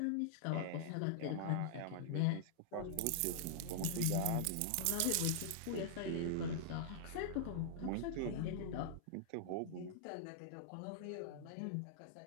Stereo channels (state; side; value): different; both; correlation -0.01